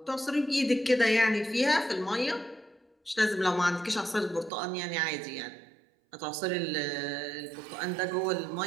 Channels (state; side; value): drops out; left; at 4.5 s